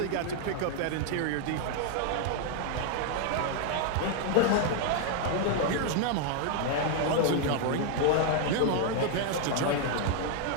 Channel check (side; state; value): both; different; correlation 0.00